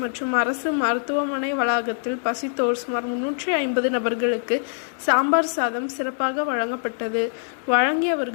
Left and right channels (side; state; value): right; silent; digital silence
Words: மற்றும் அரசு மருத்துவமனை வளாகத்தில் பசித்தோர் சுமார் 350 நபர்களுக்கு சாம்பார் சாதம் சிறப்பாக வழங்கப்பட்டது.